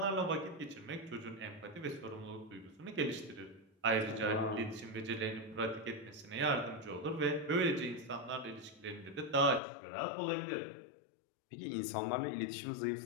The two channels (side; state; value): right; drops out; at 9.6 s